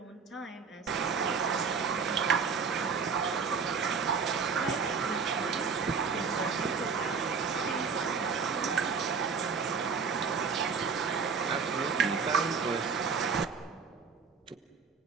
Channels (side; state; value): left; quieter; 5.5 dB